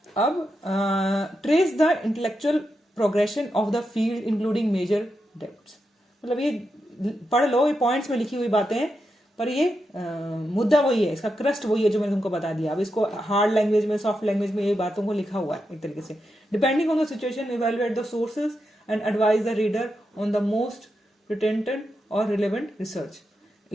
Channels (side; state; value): both; normal; correlation 0.86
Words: अब trace the intellectual progression of the field including major depths. मतलब ये पढ़ लो, ये पॉइंट्स में लिखी हुई बातें हैं, पर ये मुद्दा वही है, इसका क्रस्ट वही है जो मैंने तुमको बता दिया। अब इसको हार्ड लैंग्वेज में, सॉफ्ट लैंग्वेज में ये बातों को लिखा हुआ है एक तरीके से। Depending on the situation evaluate the sources and advise the reader on the most pertinent or relevant research.